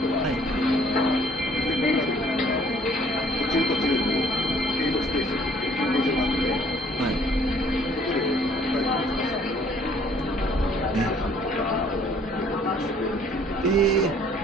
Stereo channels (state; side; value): normal; both; correlation 0.59